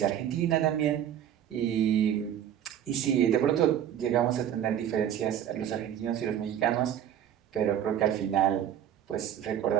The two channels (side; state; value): left; quieter; 10.2 dB